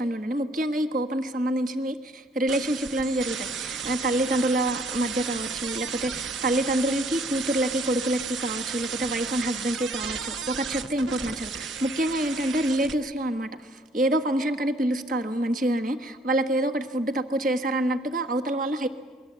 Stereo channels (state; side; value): normal; both; correlation 0.61